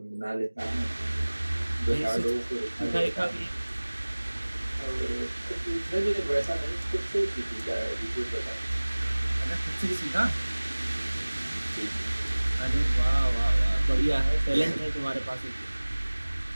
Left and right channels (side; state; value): both; inverted; correlation -1.00